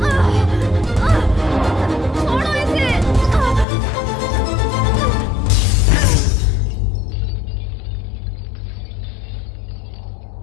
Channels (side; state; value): right; drops out; at 3.7 s